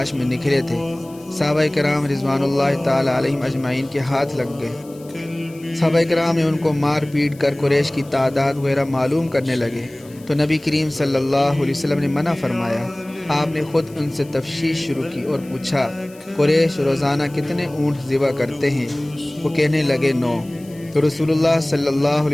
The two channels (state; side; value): noise; left; hiss, 25 dB below the sound